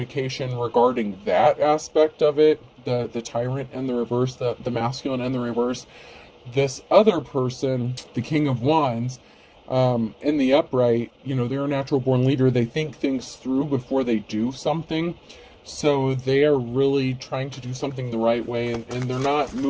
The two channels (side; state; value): both; identical; correlation 1.00